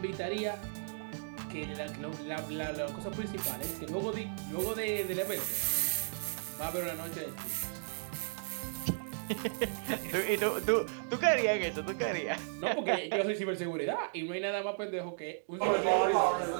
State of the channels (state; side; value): silent; left; digital silence